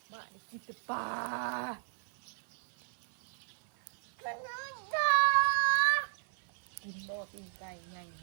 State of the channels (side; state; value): left; silent; 55 dB below the other